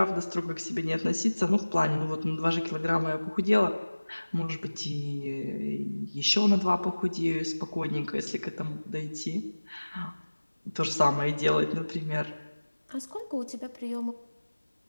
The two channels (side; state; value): both; inverted; correlation -1.00